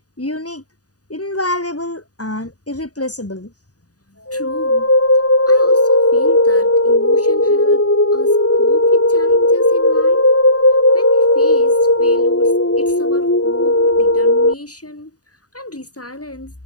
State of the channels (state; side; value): late; right; 0.68 ms